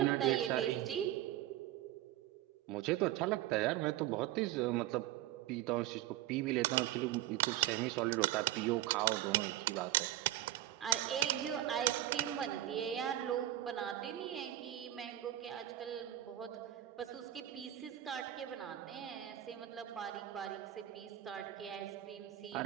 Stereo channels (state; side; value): quieter; left; 13.7 dB